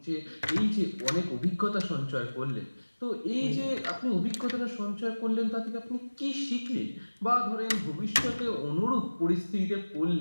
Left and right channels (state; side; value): inverted; both; correlation -1.00